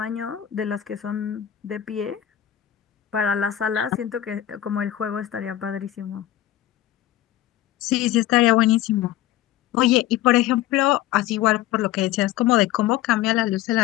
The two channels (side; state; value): right; quieter; 13.0 dB